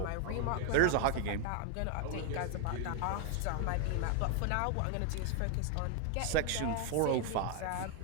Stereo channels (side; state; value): both; different; correlation 0.01